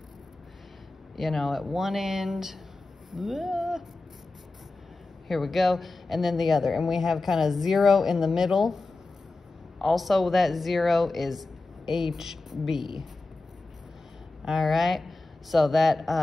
you know, at one end. Here we go. And then the other. And we have kind of 0 in the middle. Also, that 0 is HB. All right. So that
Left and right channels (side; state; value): right; quieter; 3.3 dB